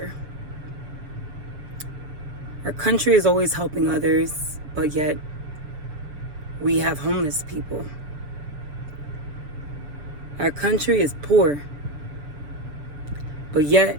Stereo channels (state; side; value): late; left; 6.8 ms